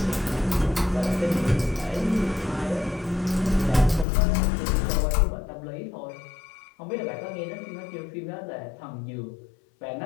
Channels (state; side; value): drops out; right; at 4.0 s